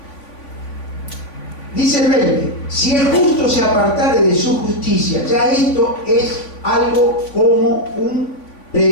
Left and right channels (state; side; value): late; right; 3.5 ms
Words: Dice el 20, si el justo se apartare de su justicia, ya esto es algo como un